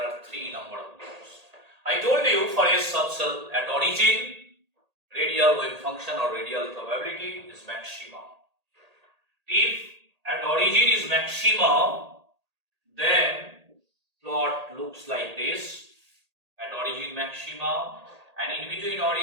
3 number of nodes. I told you for S subcell at origin, radial wave function or radial probability is maximum. If at origin is maximum, then plot looks like this. At origin maximum, and in between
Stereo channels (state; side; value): late; left; 1.8 ms